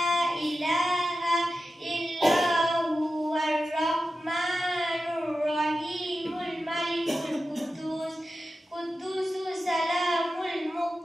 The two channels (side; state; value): both; normal; correlation 0.92